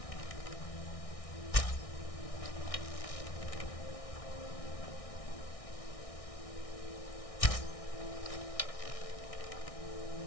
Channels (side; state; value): right; late; 1.6 ms